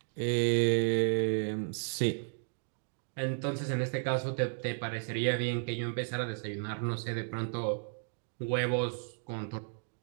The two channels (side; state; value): left; silent; digital silence